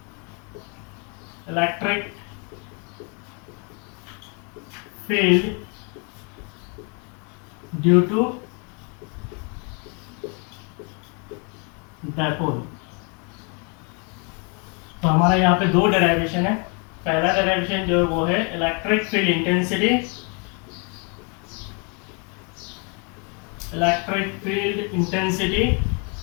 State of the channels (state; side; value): quieter; right; 35.4 dB